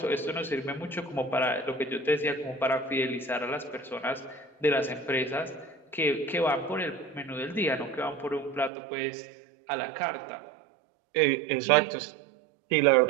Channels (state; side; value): drops out; left; at 8.7 s